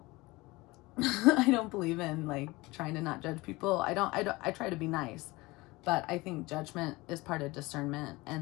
I don't believe in like trying to not judge people. I try to be nice, but I think judgment is part of discernment,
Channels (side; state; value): right; quieter; 22.0 dB